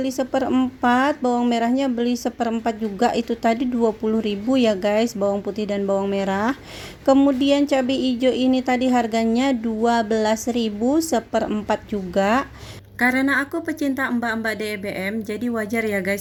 1/4, bawang merahnya beli 1/4 juga. Itu tadi 20.000 ya guys, bawang putih dan bawang merah. Kemudian cabai hijau ini tadi harganya 12.000, 1/4 juga. Karena aku pecinta mbak-mbak DBM, jadi wajar ya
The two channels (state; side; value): identical; both; correlation 1.00